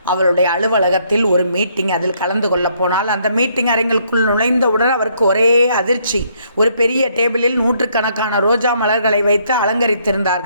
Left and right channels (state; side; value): inverted; both; correlation -0.69